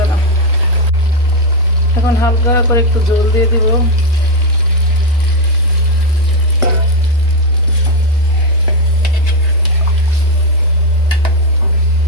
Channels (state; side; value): normal; both; correlation 0.04